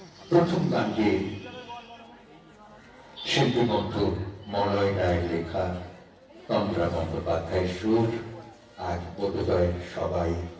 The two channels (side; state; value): both; identical; correlation 1.00